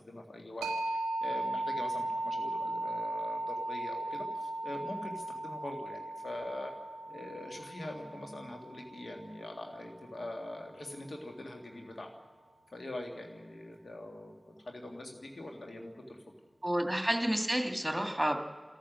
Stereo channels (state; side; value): normal; both; correlation 0.94